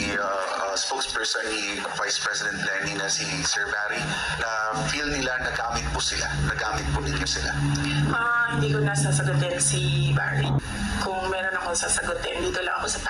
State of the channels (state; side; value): identical; both; correlation 1.00